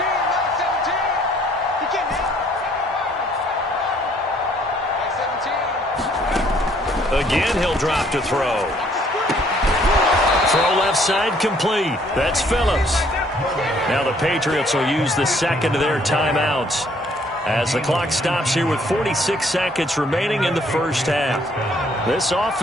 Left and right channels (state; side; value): normal; both; correlation 0.63